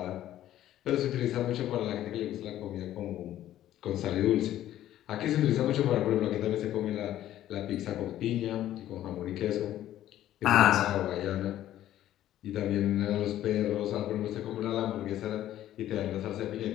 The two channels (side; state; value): right; quieter; 12.8 dB